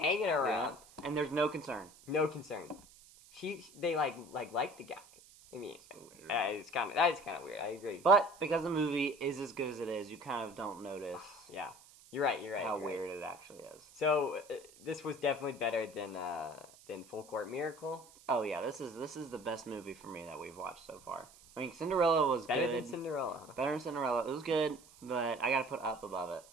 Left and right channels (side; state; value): right; noise; hiss, 23 dB below the sound